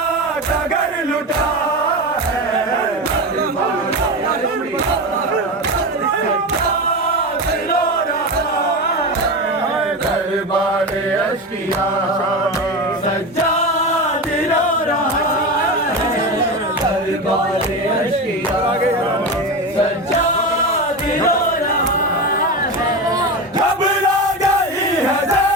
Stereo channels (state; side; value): normal; both; correlation 0.21